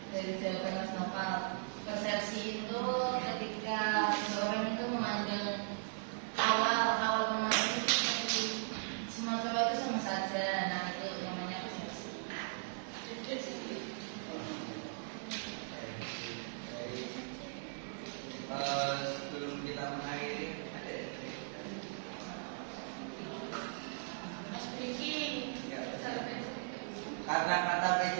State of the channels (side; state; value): left; silent; digital silence